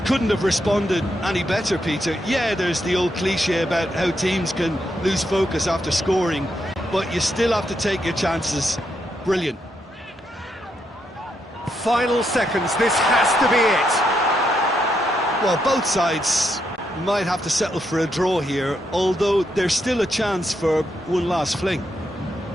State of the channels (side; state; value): both; normal; correlation 0.80